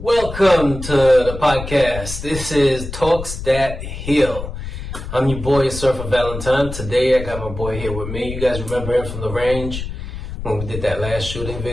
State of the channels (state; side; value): noise; left; rumble, 8 dB below the sound